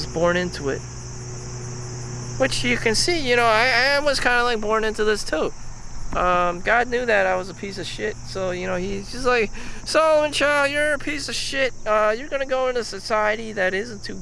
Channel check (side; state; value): both; identical; correlation 1.00